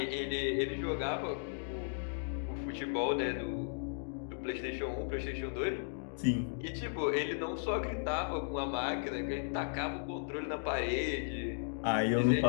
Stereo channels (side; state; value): right; silent; digital silence